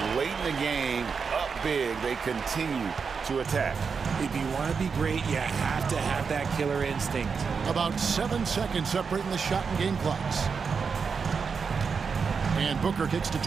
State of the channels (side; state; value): left; quieter; 5.6 dB